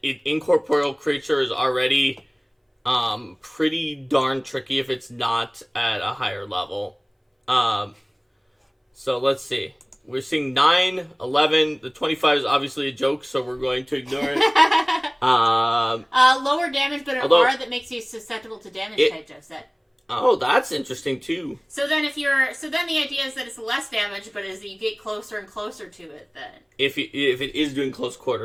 an incorporeal creature is already pretty darn tricky if it's not at a higher level. So let's see. We're seeing 9, 11. The 25 is obviously a joke, so we're going to ignore it. Lower damage, but an aura that makes you susceptible to damage type, Jeff said. Oh, that's interesting too. So then the idea is that it's less damage, but as you get closer and closer to it, then if it is doing close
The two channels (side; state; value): both; identical; correlation 1.00